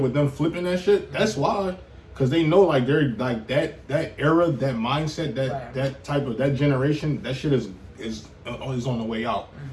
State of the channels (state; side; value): identical; both; correlation 1.00